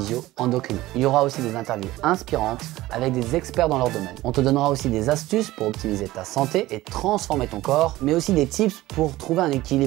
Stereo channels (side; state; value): left; quieter; 17.2 dB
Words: Il y aura aussi des interviews inspirantes avec des experts dans leur domaine. On te donnera aussi des astuces pour optimiser ta santé et transformer ton corps, mais aussi des tips pour trouver un